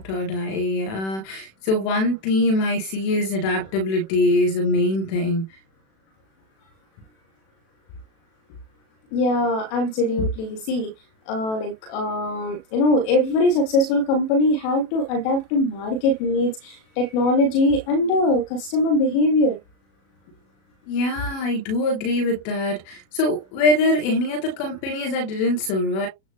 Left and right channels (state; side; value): late; right; 37 ms